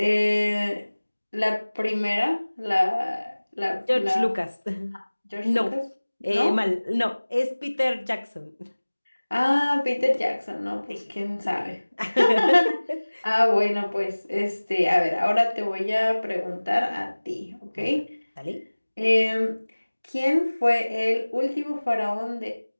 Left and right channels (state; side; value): inverted; both; correlation -1.00